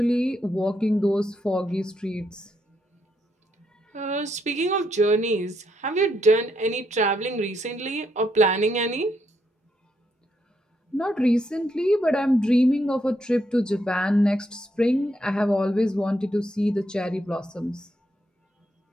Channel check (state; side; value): normal; both; correlation 0.77